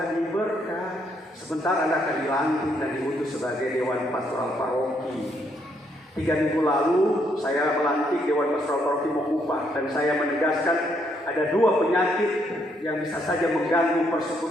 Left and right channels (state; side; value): normal; both; correlation 0.73